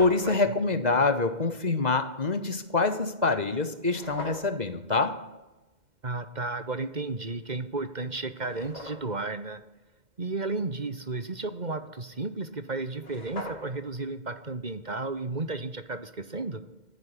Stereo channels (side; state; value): left; late; 2.0 ms